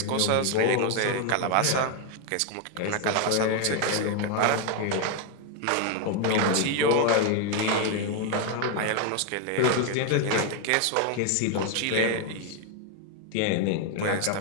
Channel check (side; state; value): both; different; correlation 0.01